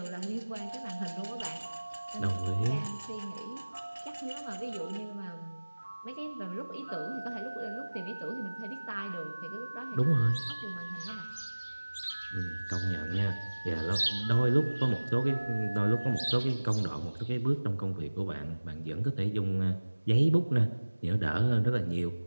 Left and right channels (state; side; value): inverted; both; correlation -1.00